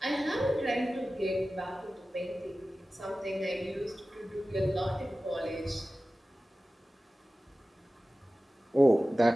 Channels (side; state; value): both; normal; correlation 0.96